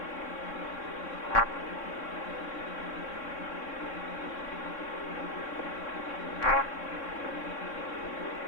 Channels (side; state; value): right; late; 3.6 ms